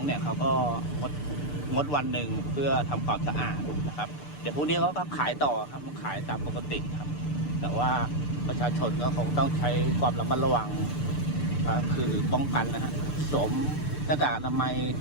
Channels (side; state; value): right; late; 6.8 ms